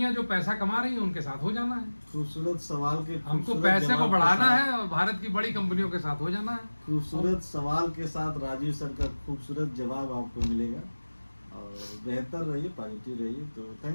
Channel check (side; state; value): both; inverted; correlation -1.00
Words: जो पैसा कमा रही हैं उनके साथ हो जाना है। खूबसूरत सवाल के हमको खूबसूरत पैसे को जवाब के बढ़ाना साथ- है और भारत की बड़ी कंपनियों के साथ हो जाना है। खूबसूरत सवाल के साथ राजीव सर का खूबसूरत जवाब आपको मिलेगा। और बेहतर रहिए, पॉजिटिव रहिए। तो